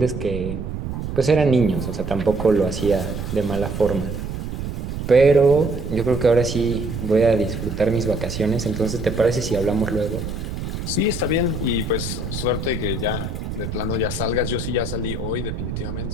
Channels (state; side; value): noise; right; rumble, 5 dB below the sound